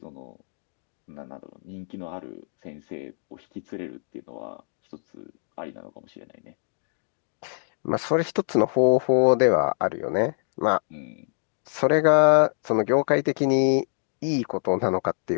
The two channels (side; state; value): right; silent; digital silence